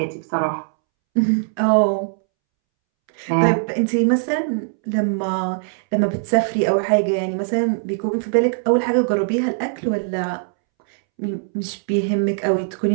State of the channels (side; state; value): left; silent; 65 dB below the other